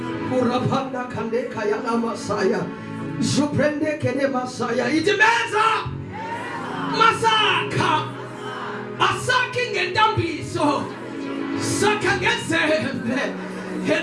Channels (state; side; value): identical; both; correlation 1.00